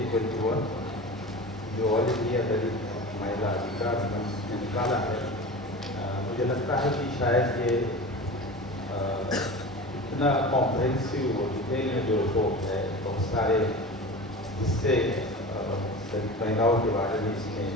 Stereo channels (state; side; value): normal; both; correlation 0.33